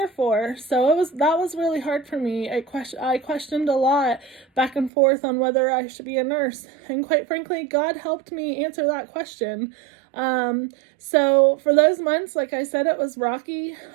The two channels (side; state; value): left; drops out; at 4.9 s